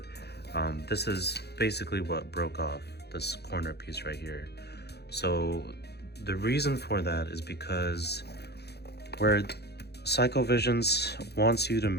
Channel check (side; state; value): right; late; 0.48 ms